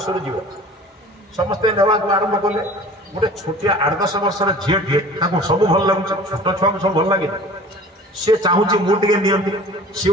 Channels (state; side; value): normal; both; correlation 0.44